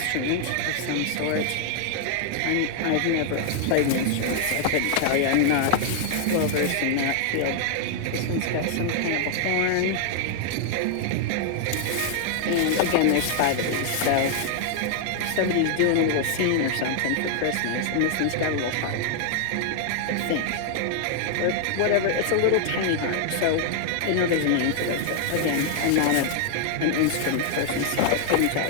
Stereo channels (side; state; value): both; different; correlation 0.00